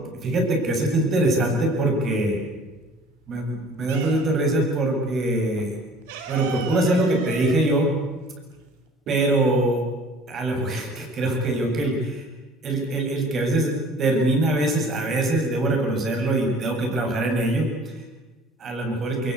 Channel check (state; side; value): normal; both; correlation 0.49